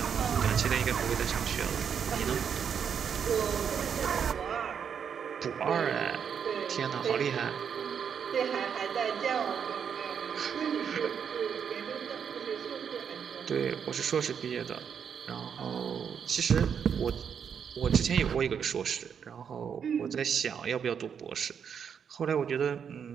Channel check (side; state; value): left; quieter; 7.4 dB